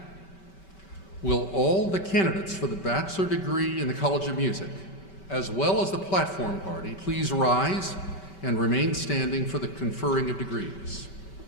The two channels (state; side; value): late; right; 5.2 ms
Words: will all the candidates for the bachelor degree in the College of Music, as well as the platform party, please rise and remain standing for the conferring of degrees.